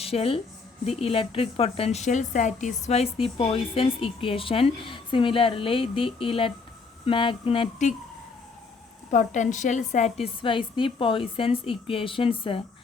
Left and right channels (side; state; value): right; quieter; 4.5 dB